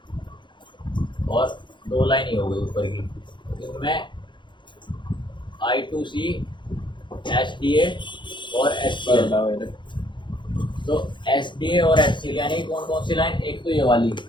और 2 लाइन ही हो गई ऊपर की। इनमें I2C, SDA और SCL। तो SDA और SCL यानी कौन कौन सी लाइन? एक तो ये वाली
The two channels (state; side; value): late; right; 0.23 ms